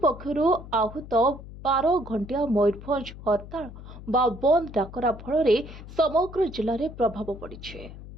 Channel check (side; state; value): left; noise; hum, 14 dB below the sound